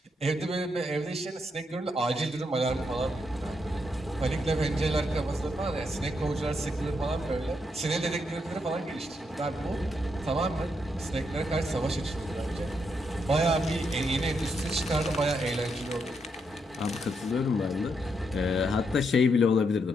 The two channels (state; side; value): normal; both; correlation 0.79